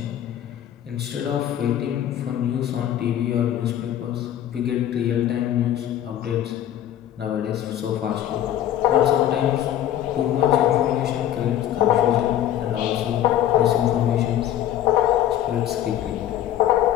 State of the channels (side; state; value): right; quieter; 11.6 dB